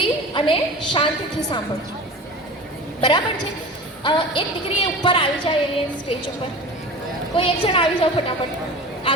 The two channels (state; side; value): normal; both; correlation 0.36